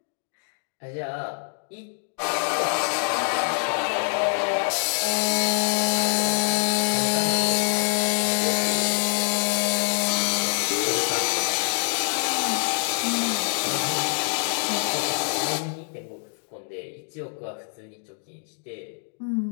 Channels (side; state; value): right; silent; digital silence